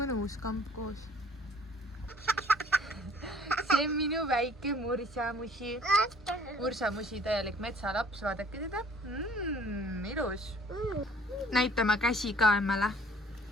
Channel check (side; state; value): both; normal; correlation 0.54